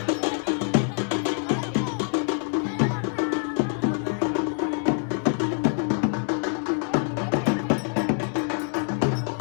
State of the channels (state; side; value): silent; right; 55 dB below the other